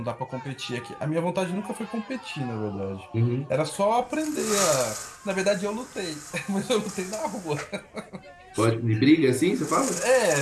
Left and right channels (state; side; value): identical; both; correlation 1.00